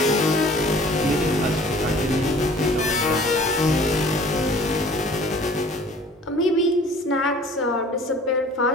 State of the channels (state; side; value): normal; both; correlation 0.50